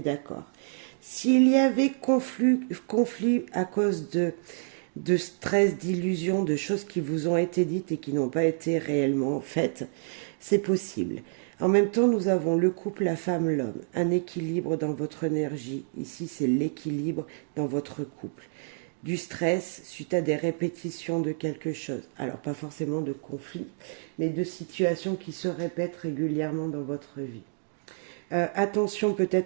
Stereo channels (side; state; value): left; silent; digital silence